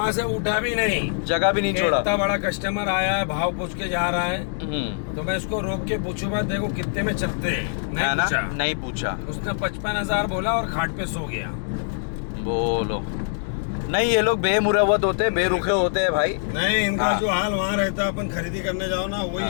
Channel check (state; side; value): silent; right; digital silence